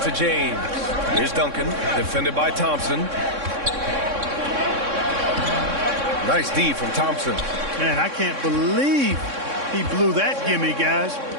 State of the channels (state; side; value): late; left; 3.6 ms